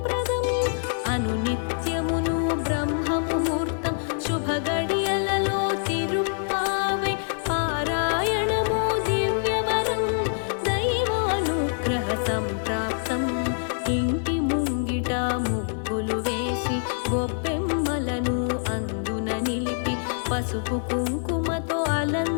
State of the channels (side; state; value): right; silent; digital silence